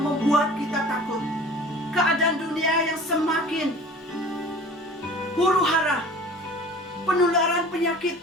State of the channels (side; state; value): both; normal; correlation 0.44